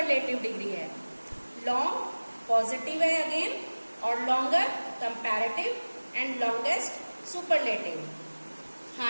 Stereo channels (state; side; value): inverted; both; correlation -1.00